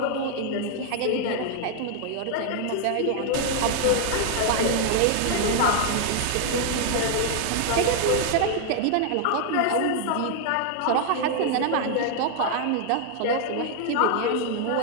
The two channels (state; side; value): different; both; correlation 0.00